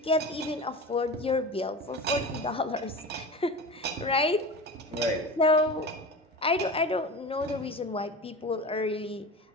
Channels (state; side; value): normal; both; correlation 0.30